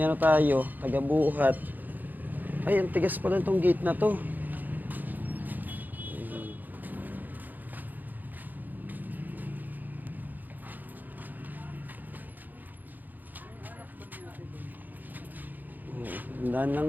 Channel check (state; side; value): late; left; 0.085 ms